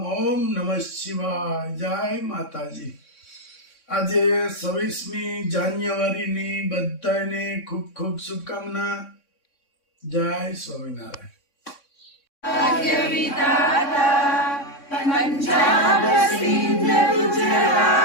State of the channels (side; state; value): right; late; 3.6 ms